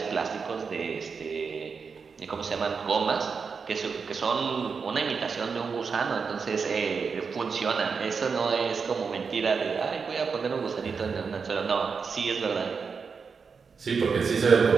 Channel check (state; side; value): quieter; left; 5.5 dB